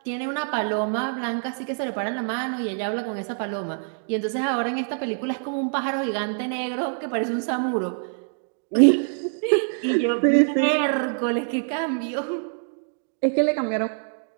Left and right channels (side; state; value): left; silent; 62 dB below the other